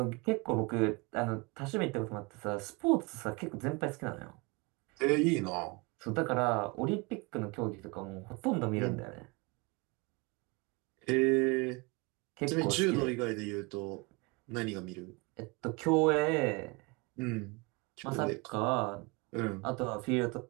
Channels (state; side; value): quieter; left; 27.6 dB